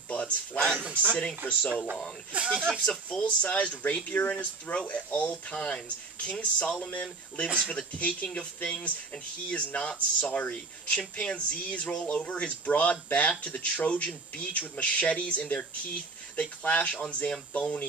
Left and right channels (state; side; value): quieter; left; 3.8 dB